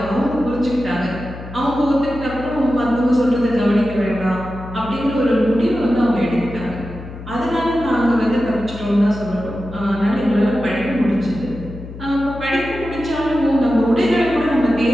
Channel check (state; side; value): noise; left; hum, 13 dB below the sound